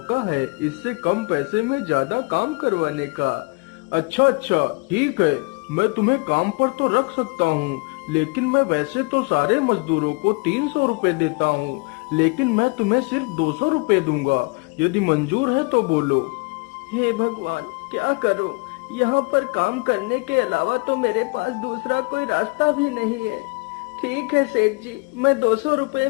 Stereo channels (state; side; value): quieter; right; 29.6 dB